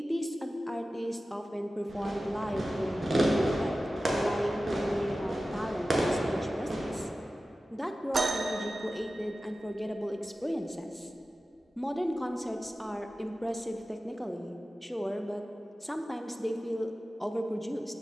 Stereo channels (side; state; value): both; normal; correlation 0.95